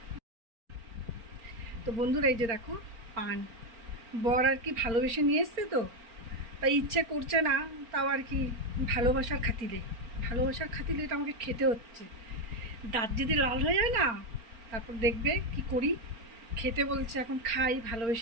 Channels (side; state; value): left; late; 4.4 ms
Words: তো বন্ধুরা এই যে দেখো পান, বর আর কি ভালোবেসে নিয়ে এসছে, তো তাই ইচ্ছে করছে না, তাও আর কি ভালোবাসার খাতিলে এটা আমাকে খেতে হচ্ছে। দাঁত যদি লাল হয়ে যায় না, তারপর দেখবে কি করি। খেতে বলছে, এখন খাই,